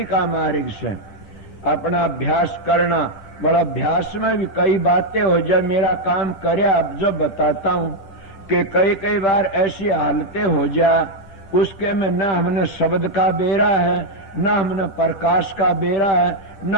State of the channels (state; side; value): late; right; 11 ms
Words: का मार्ग से अपना अभ्यास करना। बड़ा अभ्यास में भी कई बातें हो जाए, मेरा काम करे अब जो बताता हूं कि कई बार ऐसी हालतें हो जा उसके में न हमने शब्द का बेरा है, न हमने प्रकाश का बेरा है, न